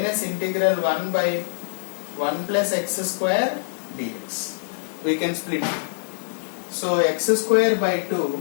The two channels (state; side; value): silent; right; 63 dB below the other